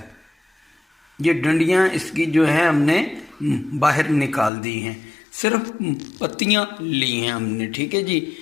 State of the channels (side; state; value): right; drops out; at 4.5 s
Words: ये डंडियाँ इसकी जो है हमने बाहर निकाल दी हैं, सिर्फ पत्तियाँ ली हैं हमने। ठीक है जी।